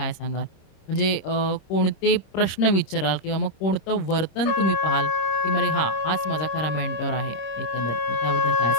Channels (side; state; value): right; late; 26 ms